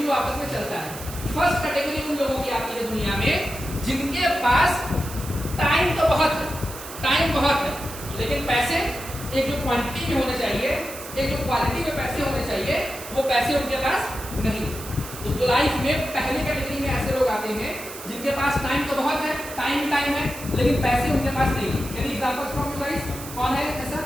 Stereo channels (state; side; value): noise; right; hiss, 12 dB below the sound